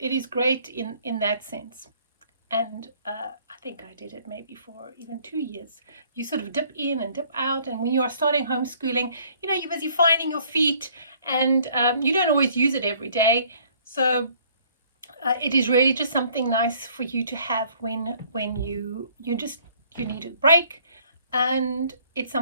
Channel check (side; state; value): both; inverted; correlation -0.59